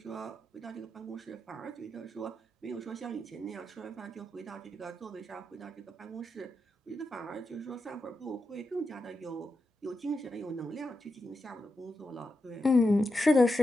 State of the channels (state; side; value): normal; both; correlation 0.87